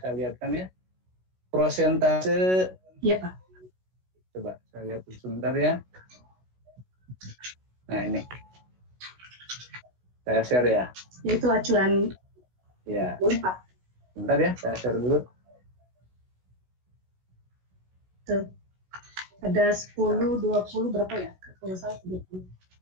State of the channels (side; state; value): left; late; 16 ms